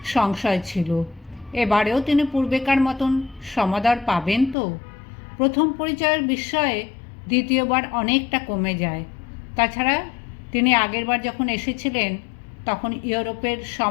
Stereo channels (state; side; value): drops out; right; at 4.5 s